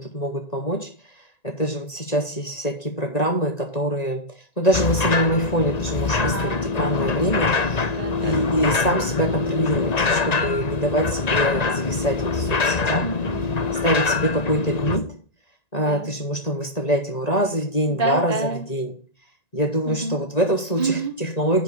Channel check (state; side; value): late; right; 1.9 ms